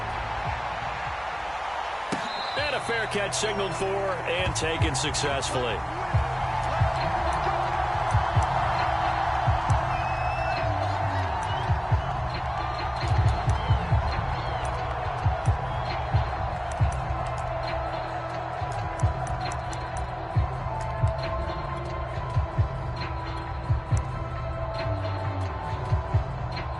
And a fair catch signaled for and taken successfully.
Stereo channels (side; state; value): both; identical; correlation 1.00